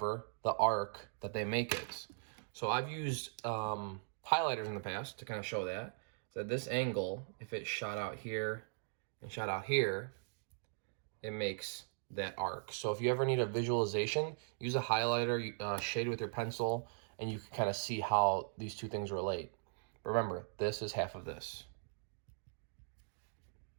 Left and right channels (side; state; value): left; silent; digital silence